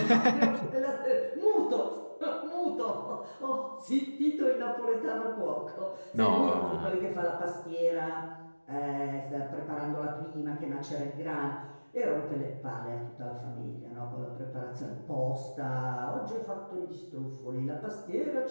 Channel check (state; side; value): inverted; both; correlation -1.00